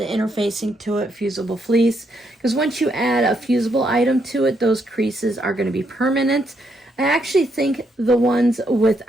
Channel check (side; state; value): both; normal; correlation 0.76